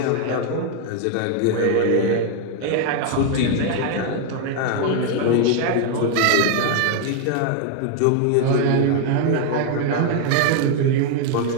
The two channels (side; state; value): both; different; correlation 0.00